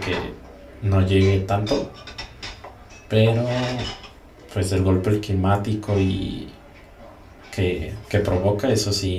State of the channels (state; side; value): identical; both; correlation 1.00